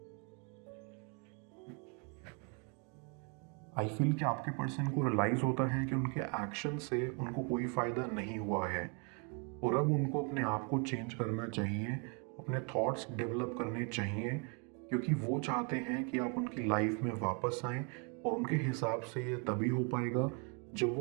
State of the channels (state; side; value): quieter; left; 35.7 dB